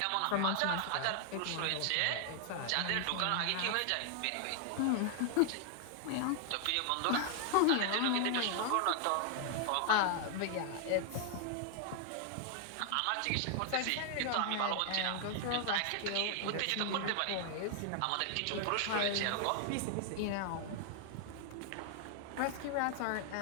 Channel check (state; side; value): different; both; correlation 0.00